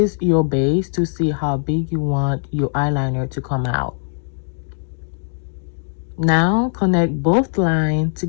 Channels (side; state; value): right; silent; 63 dB below the other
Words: your base to see how big you want your eyeliner to come out. Now connect both lines